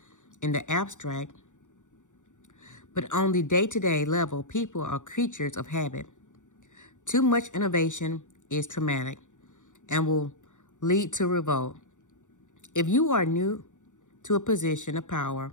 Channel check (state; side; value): late; right; 0.86 ms